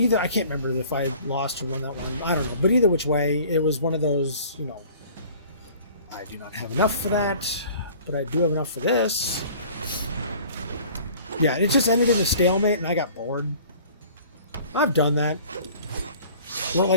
can't remember if I lost or won that one. I don't know. But either which way, it was one of those, you know, I do not have enough for that, but I do have enough for this. Yeah, it just ended in a stalemate, and I got bored. I've done that. Well,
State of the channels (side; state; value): both; inverted; correlation -0.48